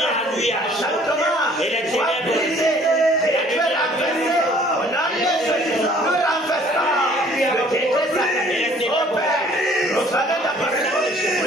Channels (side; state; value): both; normal; correlation 0.56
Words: lui a et les ténèbres.